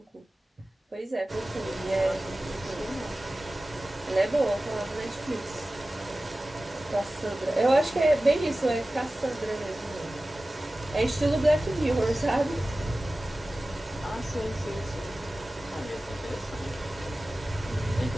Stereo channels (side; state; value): both; normal; correlation 0.96